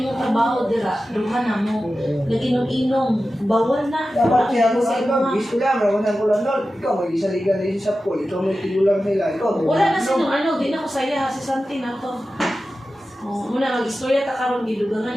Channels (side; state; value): both; normal; correlation 0.93